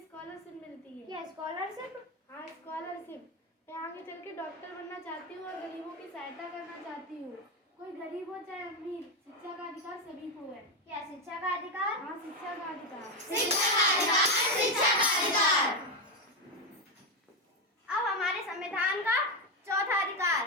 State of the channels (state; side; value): normal; both; correlation 0.10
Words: मिलती है। क्या स्कॉलरशिप? हाँ, स्कॉलरशिप। मैं आगे चल के डॉक्टर बनना चाहती हूँ और गरीबों की सहायता करना चाहती हूँ। कोई गरीब हो चाहे अमीर, शिक्षा का अधिकार सभी को है। क्या शिक्षा का अधिकार? हाँ, शिक्षा का अधिकार। अब हमारे संविधान का चौथा अधिकार,